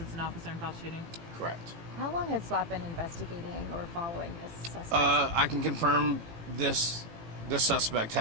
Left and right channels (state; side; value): late; left; 18 ms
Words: an officer-involved shooting. Correct. How long had SWAT been investigating or following this suspect? I can confirm this suspect